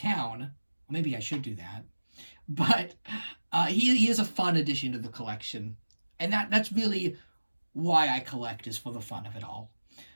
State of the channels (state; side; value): inverted; both; correlation -1.00